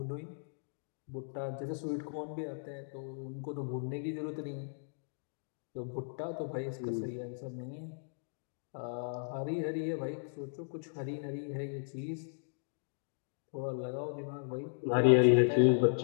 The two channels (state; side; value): silent; right; digital silence